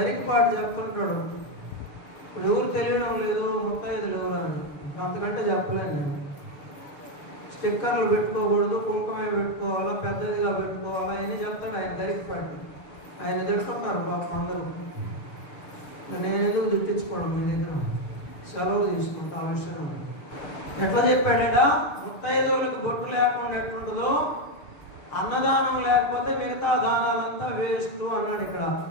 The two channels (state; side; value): late; right; 6.5 ms